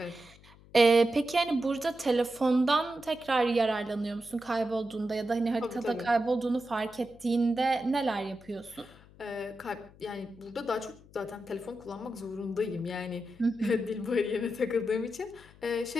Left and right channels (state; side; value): noise; left; hum, 24 dB below the sound